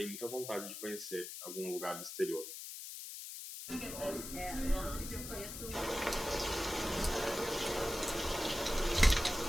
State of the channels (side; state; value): left; noise; hiss, 8 dB below the sound